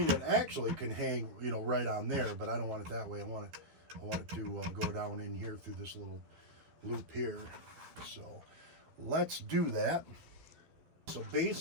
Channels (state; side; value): late; left; 12 ms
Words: It actually can hang, right on there, but I don't want it that way. I want it to go down in here through this little loop here. So let's do that. So